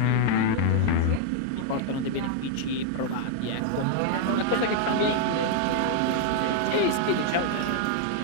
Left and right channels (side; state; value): both; different; correlation 0.00